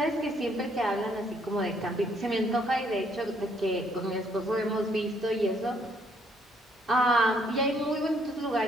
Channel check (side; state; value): both; normal; correlation 0.68